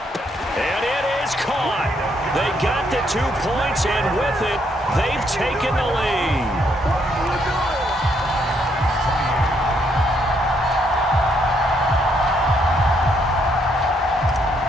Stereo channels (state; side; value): normal; both; correlation 0.72